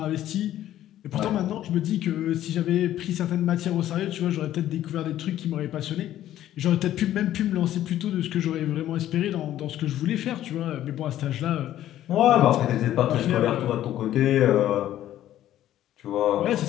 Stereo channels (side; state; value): right; quieter; 12.7 dB